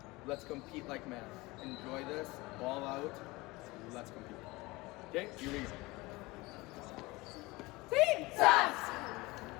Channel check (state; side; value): quieter; right; 22.1 dB